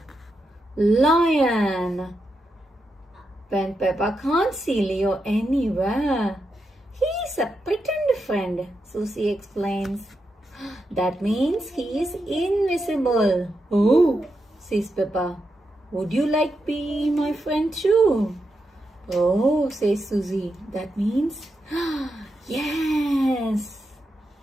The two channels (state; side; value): normal; both; correlation 0.86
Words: Lion. When Peppa can't see Leo anywhere, he's a pretend friend, Susie explains. That means he is invisible. Oh, says Peppa. Would you like be my friend too? Oh, says Susie. That means yes.